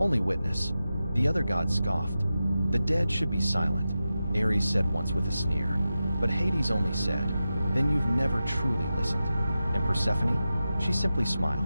witness. The other gods scoffed. "The dead should be silent," Ares said once with a sneer. But Hades only said, "Then you've never truly listened." And Persephone? She simply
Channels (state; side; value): inverted; both; correlation -0.92